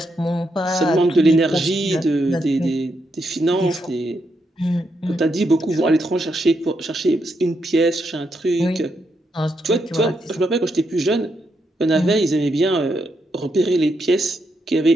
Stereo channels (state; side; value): normal; both; correlation 0.81